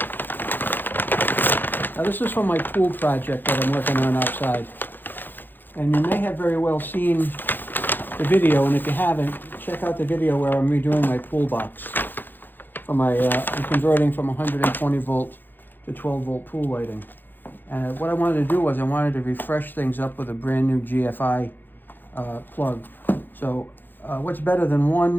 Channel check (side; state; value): right; late; 0.092 ms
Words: Now this is from my pool project that I'm working on outside. And you may have very well seen the video, and if you haven't, check out the video where I'm redoing my pool box. For my, I'm converting from 120 volt to 12 volt pool lighting. And what I wanted to do was I wanted to refresh things up with a brand new GFI plug. So what's better than